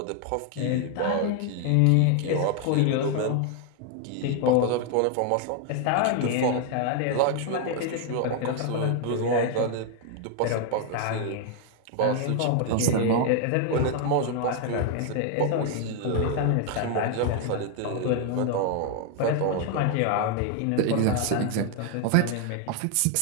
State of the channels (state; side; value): different; both; correlation 0.00